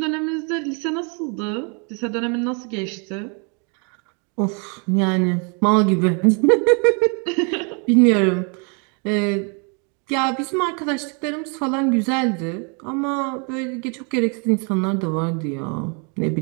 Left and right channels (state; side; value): quieter; left; 36.7 dB